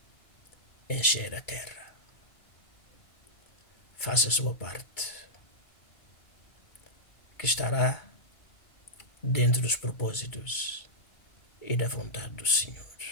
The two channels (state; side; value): late; right; 2.3 ms